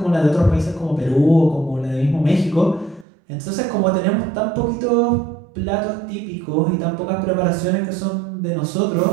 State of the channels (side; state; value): left; drops out; at 3.1 s